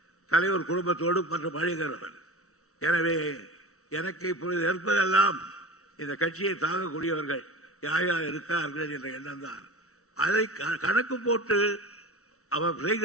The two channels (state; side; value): late; right; 0.64 ms